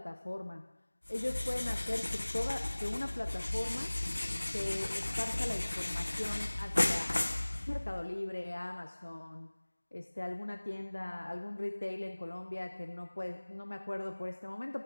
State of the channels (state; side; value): inverted; both; correlation -1.00